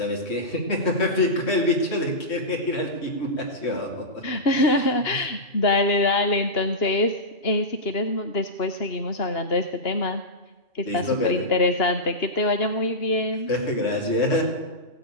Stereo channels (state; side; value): late; right; 2.9 ms